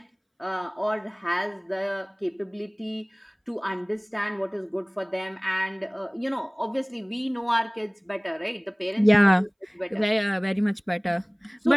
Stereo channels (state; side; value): identical; both; correlation 1.00